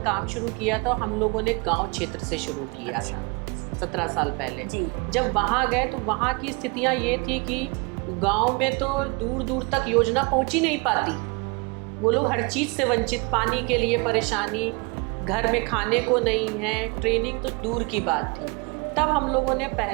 काम शुरू किया तो हम लोगों ने गांव क्षेत्र से शुरू किया था 17 साल पहले। जब वहाँ गए तो वहाँ की स्थितियाँ ये थी कि गांव में तो दूर दूर तक योजना पहुँच ही नहीं पाती। वो लोग हर चीज़ से वंचित, पानी के लिए परेशानी, घर में खाने को नहीं है, ट्रेनिंग तो दूर की बात थी। तब हम लोगों ने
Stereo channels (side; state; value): left; quieter; 29.8 dB